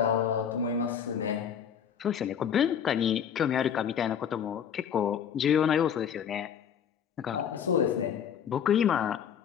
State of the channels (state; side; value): quieter; right; 8.2 dB